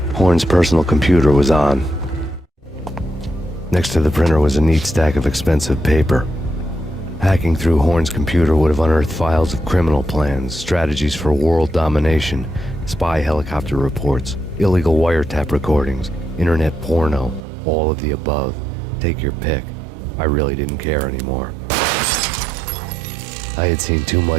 Horn's personal computer was on. Next to the printer was a neat stack of expensive paper. Hacking through Horn's computer would have unearthed files of criminal plans, strategies for world domination, spy helicopter reports, illegal wiretap recordings, internet porno, all of the above. Take your pick. I really didn't care anymore. I had seen too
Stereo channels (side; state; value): left; drops out; at 17.4 s